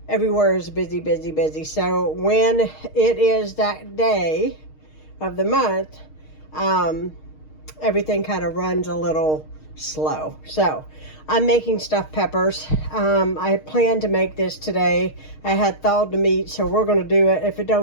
everywhere is busy, busy, busy. So when it is that day of the month, everything kind of runs a little slow. So I'm making stuffed peppers. I plan to make this today. I had thawed the meat, so we're going to do it. If it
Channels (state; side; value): late; right; 6.5 ms